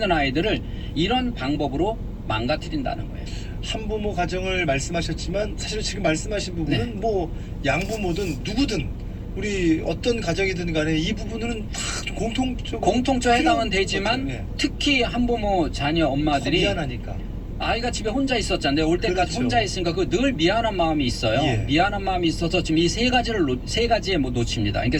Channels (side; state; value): both; identical; correlation 1.00